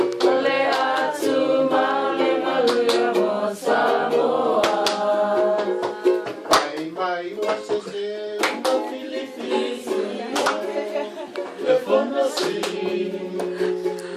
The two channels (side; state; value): both; identical; correlation 1.00